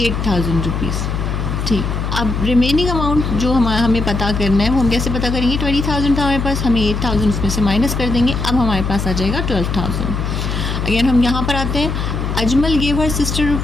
रुपीज़। ठीक, अब रिमेनिंग अमाउंट जो हमें पता करना है वो हम कैसे पता करेंगे। 20,000 था हमारे पास, हमें 8,000 उसमें से माइनस कर देंगे। अब हमारे पास आ जाएगा 12,000। अगेन हम यहाँ पर आते हैं। Ajmal gave her sister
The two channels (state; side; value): noise; left; hum, 2 dB below the sound